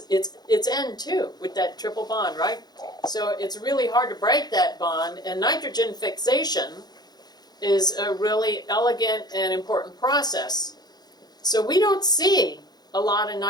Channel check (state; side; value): late; right; 0.20 ms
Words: it's N2 with that triple bond, right? So it's really hard to break that bond, and nitrogen fixation is a really elegant and important process. So we don't see a lot of